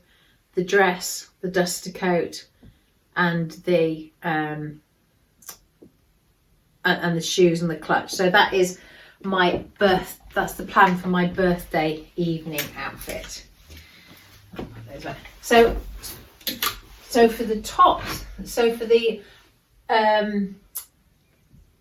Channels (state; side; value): identical; both; correlation 1.00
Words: the dress, the duster coat, and the shoes and the clutch. So that is that's the plan for my birthday evening outfit. So for the tops, so for